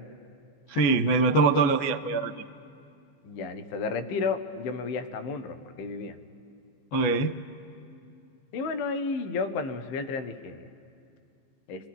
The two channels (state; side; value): late; right; 14 ms